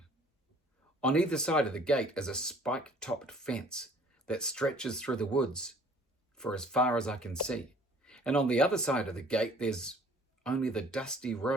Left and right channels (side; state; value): both; normal; correlation 0.54